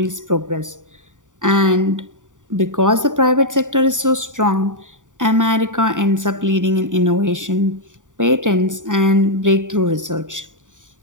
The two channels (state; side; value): late; left; 0.87 ms